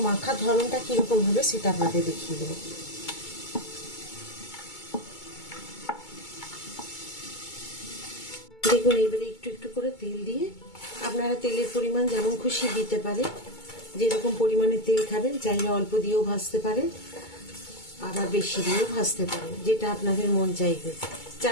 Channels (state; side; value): late; right; 2.2 ms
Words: মাখার ধরনটা কিরকম হবে সেটা আপনাদের দেখিয়ে দেবো। দেখুন এবারে একটু একটু করে তেল দিয়ে, আপনারা তেলের পরিমাণ যেমন খুশি দিতে পারেন, যেরকম পরিমাণে তেল খাবেন। চাইলে অল্প দিয়েও ভাজতে পারেন, আবার বেশি দিয়েও ভাজতে পারেন, যেটা আপনাদের মন চাইবে।